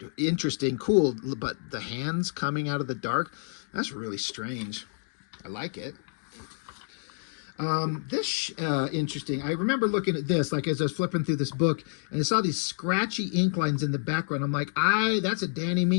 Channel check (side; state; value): right; silent; digital silence